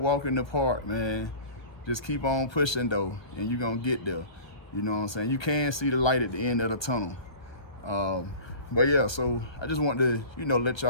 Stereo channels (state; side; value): late; right; 1.1 ms